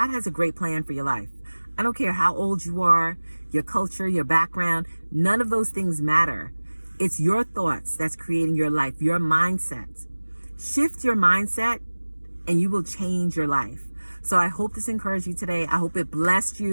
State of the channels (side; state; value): both; inverted; correlation -1.00